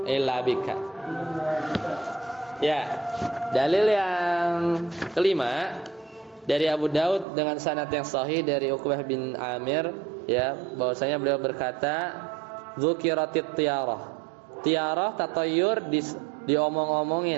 illa bika. Ya, dalil yang kelima dari Abu Daud dengan sanad yang sahih dari Uqbah bin Amir ya, bahwasanya beliau berkata dzukiratit tiyarah. Tiyarah tatayur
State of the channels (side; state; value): left; drops out; at 7.2 s